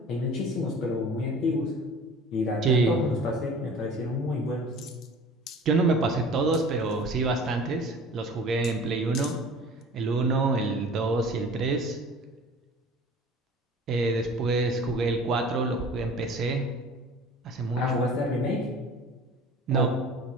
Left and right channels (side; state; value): both; normal; correlation 0.44